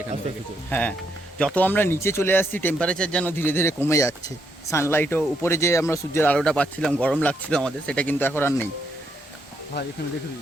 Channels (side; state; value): both; normal; correlation 0.77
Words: এখান থেকে। হ্যাঁ, যত আমরা নিচে চলে আসছি টেম্পারেচার যেন ধীরে ধীরে কমে যাচ্ছে। সানলাইটও উপরে, যে আমরা সূর্যের আলোটা পাচ্ছিলাম, গরম লাগছিল আমাদের, সেটা কিন্তু এখন আর নেই। ভাই এখানে দেখবি